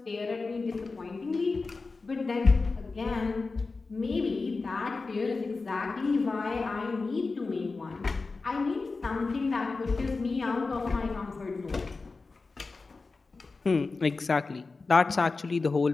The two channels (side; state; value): right; quieter; 4.0 dB